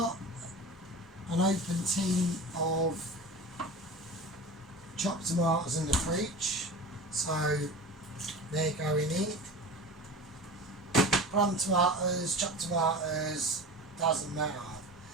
an open tin of chopped tomatoes in the fridge, so they're going in. Plum tomatoes, chopped tomatoes, doesn't matter.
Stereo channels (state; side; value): normal; both; correlation 0.33